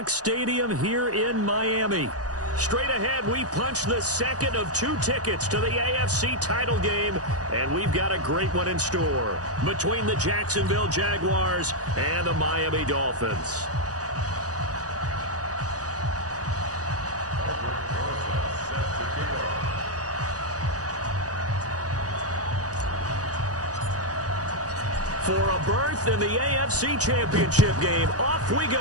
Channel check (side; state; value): left; late; 0.67 ms